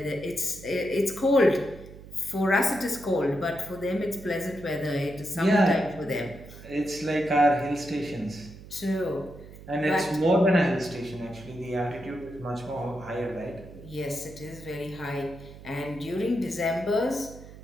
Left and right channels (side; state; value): right; noise; hum, 17 dB below the sound